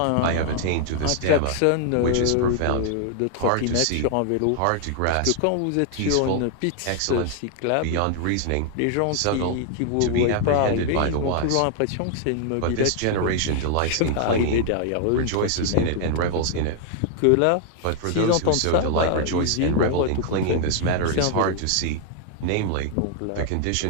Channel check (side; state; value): both; different; correlation 0.00